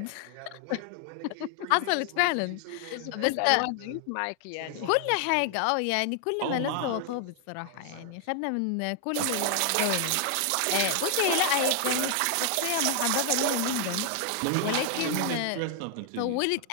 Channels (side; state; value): both; different; correlation 0.00